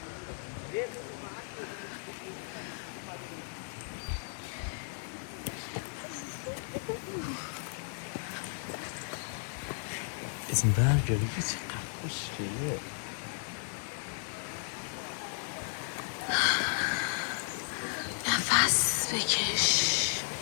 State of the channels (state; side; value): silent; right; digital silence